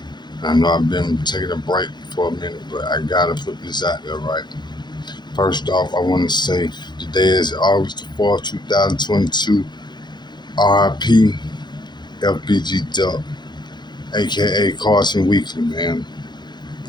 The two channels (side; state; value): right; late; 0.21 ms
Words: I know I've been taking a break for a minute, but I gotta put this out there, right? First off, I want to say today is August the 4th, 2022. R.I.P FBG-Duck, aka Carson Weekly, man.